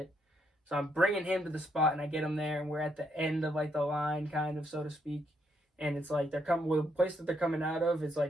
So I'm bringing him to the spot, and I get him there, and we're at the end of, like, the line, kind of, so to speak. And it's, like, the place that they're coming out of is,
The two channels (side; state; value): both; normal; correlation 0.75